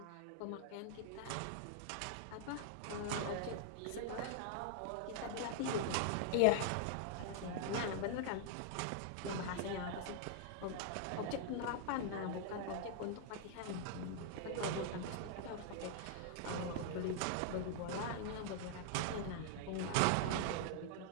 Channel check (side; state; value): both; different; correlation -0.01